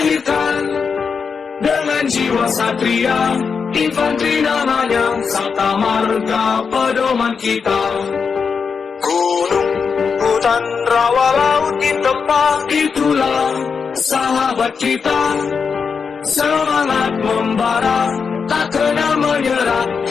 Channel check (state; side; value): quieter; right; 5.8 dB